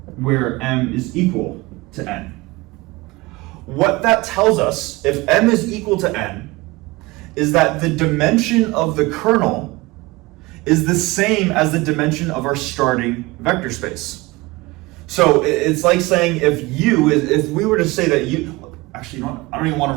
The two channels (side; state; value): left; quieter; 22.2 dB